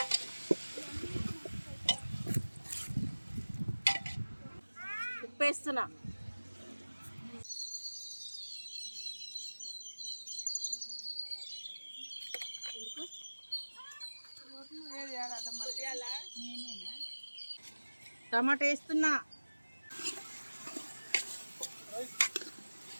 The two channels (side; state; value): both; inverted; correlation -1.00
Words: ఉప్పు వేస్తున్నా. టమాటా వేస్తున్నా.